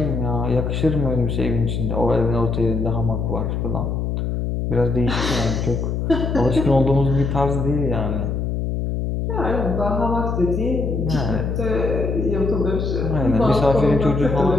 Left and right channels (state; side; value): noise; left; hum, 1 dB below the sound